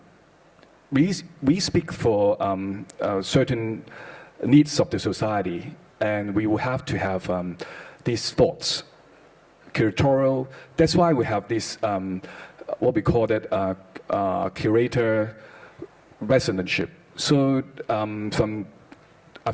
we speak for certain needs of the society, and we will have to have these thoughts. Curatorial, that's why we have this, what we call it, curator residentship. So from I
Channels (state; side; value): identical; both; correlation 1.00